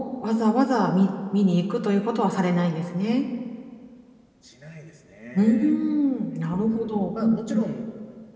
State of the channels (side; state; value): both; identical; correlation 1.00